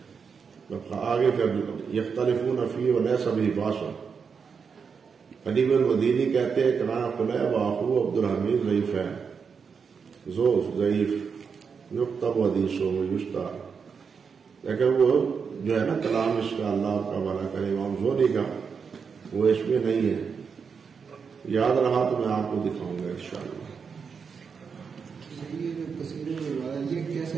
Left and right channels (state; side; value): quieter; left; 6.0 dB